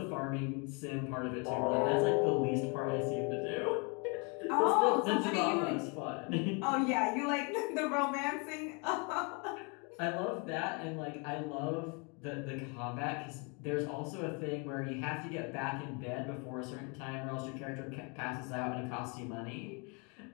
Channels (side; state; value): right; quieter; 33.5 dB